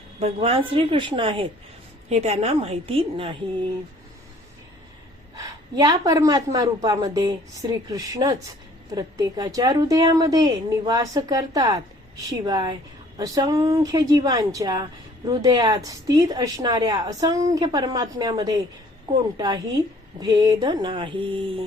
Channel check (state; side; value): normal; both; correlation 0.56